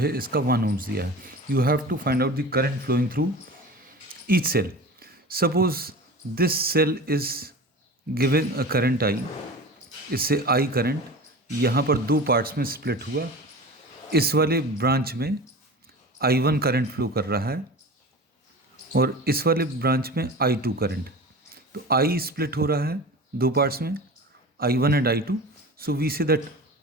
इसका 1 ohms दिया है। You have to find out the current flowing through each cell. Suppose this cell is given a current I, इससे I करंट यहाँ पर दो पार्ट्स में स्प्लिट हुआ। इस वाले ब्रांच में I1 करंट फ्लो कर रहा है और इस वाले ब्रांच में I2 करंट। तो I स्प्लिट हो रहा है दो पार्ट्स में, I1 and I2। So we say that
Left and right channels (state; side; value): normal; both; correlation 0.34